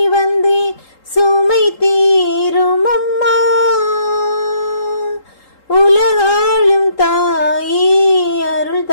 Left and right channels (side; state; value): right; late; 3.8 ms